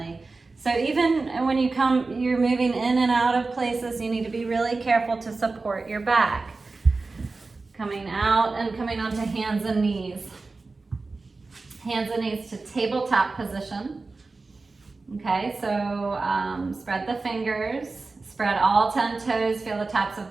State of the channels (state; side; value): quieter; left; 3.8 dB